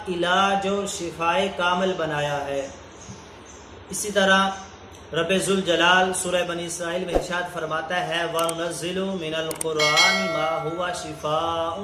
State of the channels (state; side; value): identical; both; correlation 1.00